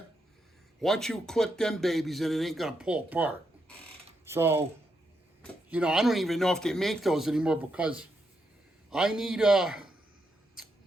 Once you clip them babies in, it ain't gonna pull apart. So, you know, I don't even know if they make those anymore, because I need, I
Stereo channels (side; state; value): both; normal; correlation 0.81